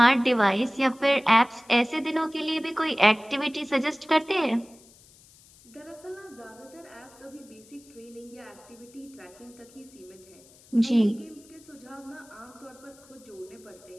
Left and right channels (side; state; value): left; noise; hiss, 25 dB below the sound